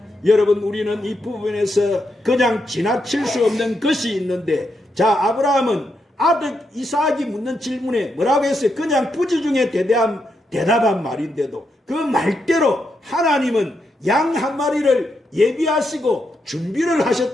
여러분 우리는 이 부분에서 그냥 지나칠 수 없는 것이 있는데, 자, 아브라함은 아들 이삭이 묻는 질문에 뭐라고 했어요? 그냥 부지 중에 대답한 말인데도 그 말대로 하나님은 양 한 마리를 예비하시고 준비를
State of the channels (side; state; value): both; normal; correlation 0.82